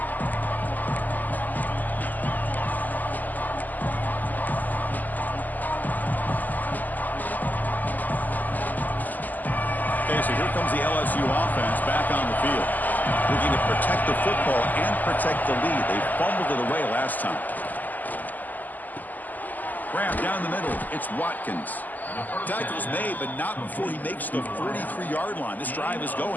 So here comes the LSU offense back on the field. Looking to protect the football and protect the lead. They fumbled it away last time. Grab down the middle. It's Watkins. Tackle's made, but not before he makes the 43-yard line. This drive is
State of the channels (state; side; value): late; right; 0.083 ms